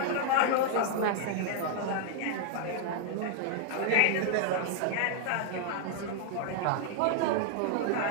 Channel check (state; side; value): different; both; correlation 0.00